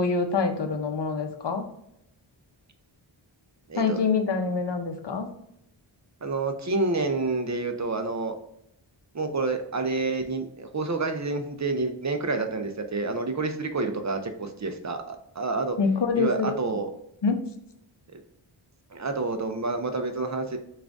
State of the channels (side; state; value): both; normal; correlation -0.11